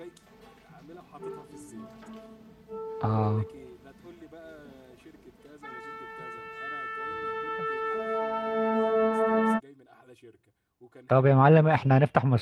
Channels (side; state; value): both; identical; correlation 1.00